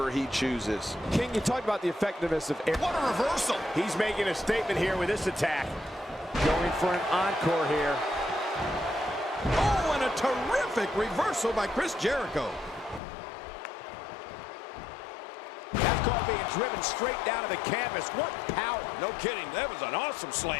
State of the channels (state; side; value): drops out; right; at 13.0 s